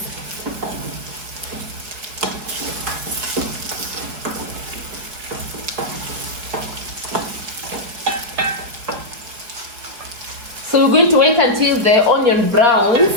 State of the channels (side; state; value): left; late; 4.8 ms